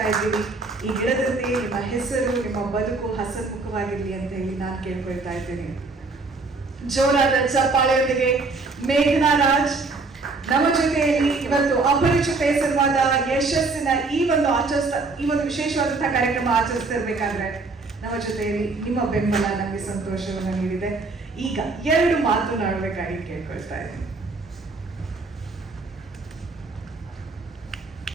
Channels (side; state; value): left; quieter; 3.8 dB